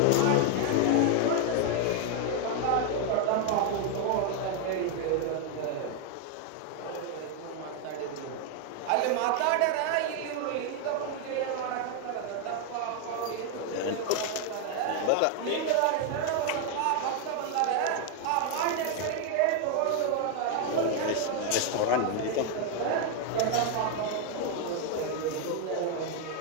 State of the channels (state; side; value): different; both; correlation 0.00